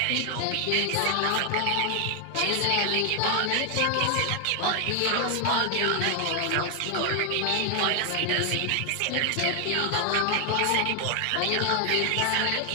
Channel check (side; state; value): both; different; correlation 0.00